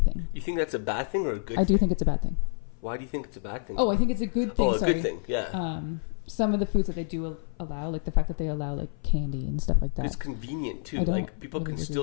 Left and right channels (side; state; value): right; silent; 55 dB below the other